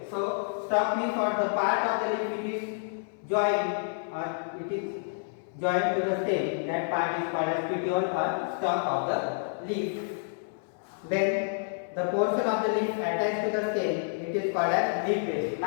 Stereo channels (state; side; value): silent; right; 59 dB below the other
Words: So stalk means what? The part of the leaf it is joined to the stem. That part is called as petiole or stalk of the leaf. Then the portion of the leaf attached to the stem, it is called as leaf base.